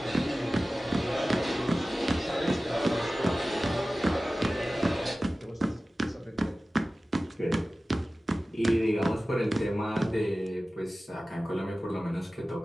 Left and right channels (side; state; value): both; normal; correlation 0.96